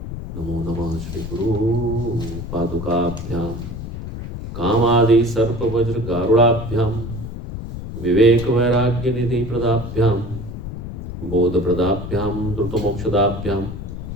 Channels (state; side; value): noise; left; rumble, 8 dB below the sound